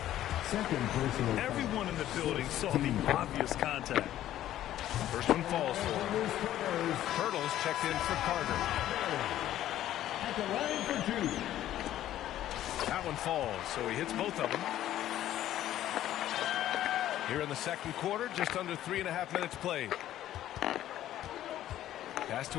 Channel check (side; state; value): right; quieter; 12.8 dB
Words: 2nd personal foul. Everyone in the building saw the obvious contact. First one falls for him. Hurdles checked in for Carter. At the line for 2. That one falls, so he hits both of them. Here in the 2nd quarter, just under 3.5 minutes played. Pass